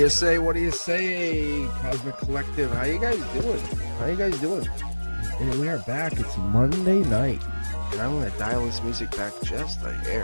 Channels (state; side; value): inverted; both; correlation -1.00